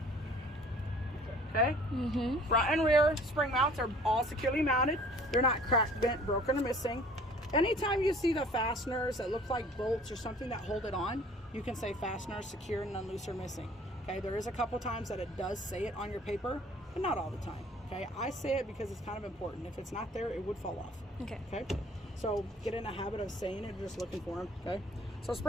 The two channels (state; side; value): normal; both; correlation 0.52